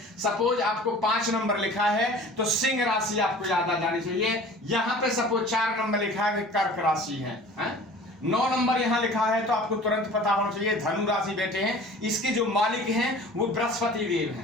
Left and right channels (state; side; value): normal; both; correlation 0.44